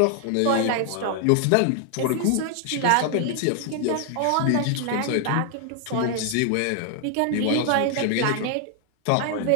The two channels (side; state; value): both; different; correlation 0.00